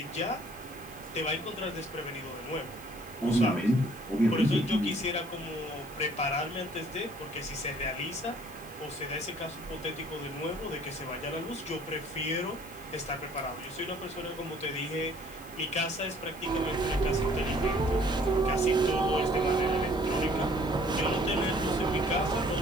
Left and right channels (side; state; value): left; noise; hiss, 19 dB below the sound